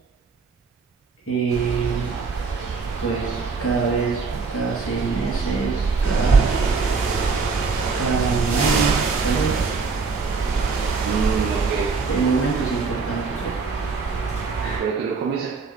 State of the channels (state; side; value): quieter; left; 4.6 dB